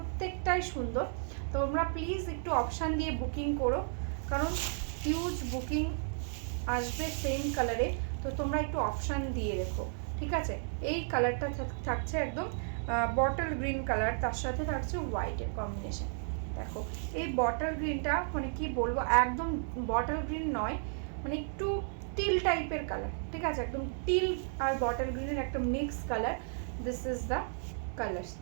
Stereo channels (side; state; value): left; silent; 55 dB below the other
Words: সুন্দর। তোমরা প্লিজ একটু অপশান দিয়ে বুকিং করো, কারণ হিউজ বুকিং আসবে সেম কালারে, তো তোমরা একটু অপশান দিয়ে রেখো, ঠিক আছে। এই কালারটা থাকছে একদম বটল গ্রিন কালার, তার সাথে থাকছে হোয়াইটের কম্বিনেশন। দেখো এই বটল গ্রিনটা মানে কি বলবো, একদম বটল গ্রিন নয়, মানে একটু টিল টাইপের কালার, ঠিক আছে, একদম টিल और बॉटल ग्रीन একটা mix colour. This is the colours,